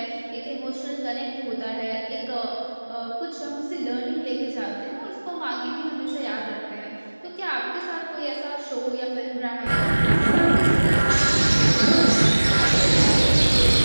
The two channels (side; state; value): both; inverted; correlation -1.00